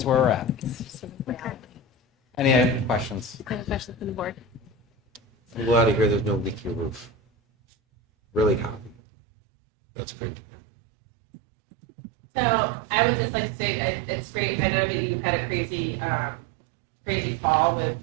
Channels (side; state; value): left; drops out; at 9.0 s